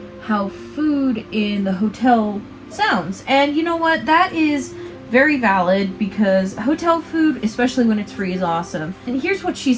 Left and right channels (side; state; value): both; identical; correlation 1.00